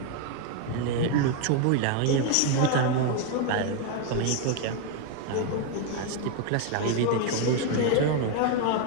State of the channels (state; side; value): different; both; correlation 0.01